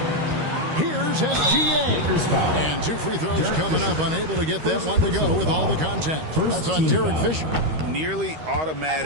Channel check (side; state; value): left; late; 13 ms